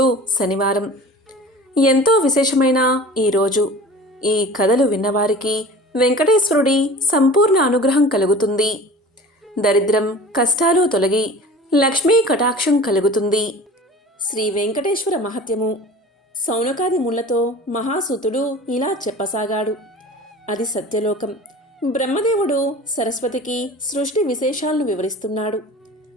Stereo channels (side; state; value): both; normal; correlation 0.39